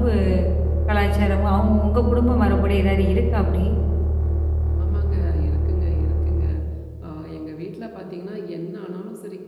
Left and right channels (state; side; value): identical; both; correlation 1.00